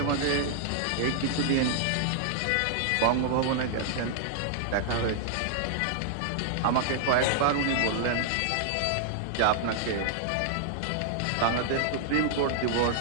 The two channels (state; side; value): different; both; correlation -0.01